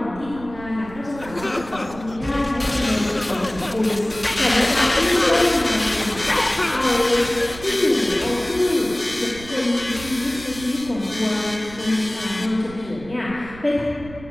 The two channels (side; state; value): right; noise; rumble, 16 dB below the sound